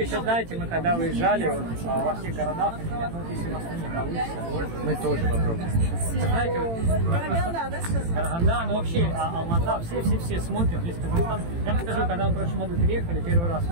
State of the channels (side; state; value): left; late; 18 ms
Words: знаете, мы когда выезжали вот, во всех городах, ну, если вас не получится, мы тоже попробуем. Знаете, вот, Караганда, да, сказал? Караганда, ну вообще Алмата, все смотрят, весь Казахстан. Я вам скажу, когда мы в прошлом году приехали, первый раз